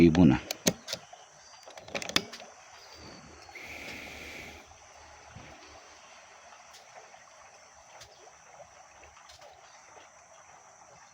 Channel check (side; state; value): both; identical; correlation 1.00